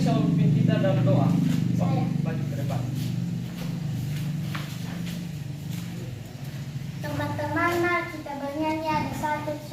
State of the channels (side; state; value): both; identical; correlation 1.00